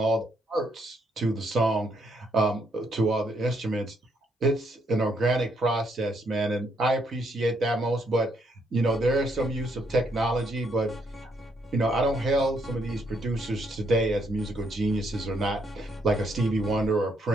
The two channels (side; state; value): both; normal; correlation 0.74